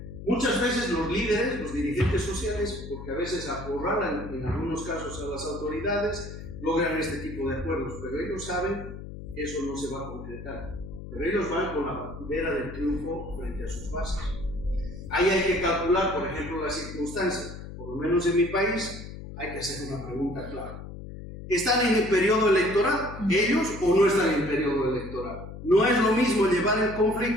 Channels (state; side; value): noise; left; hum, 11 dB below the sound